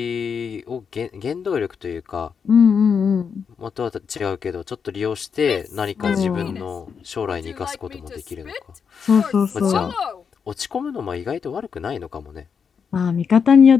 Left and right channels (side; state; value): right; quieter; 6.5 dB